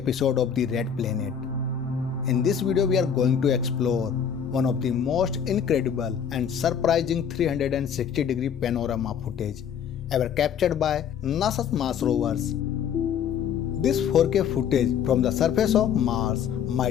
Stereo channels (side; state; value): right; quieter; 7.9 dB